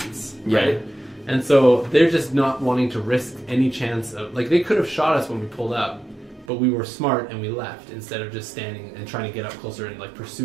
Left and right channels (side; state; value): left; drops out; at 6.5 s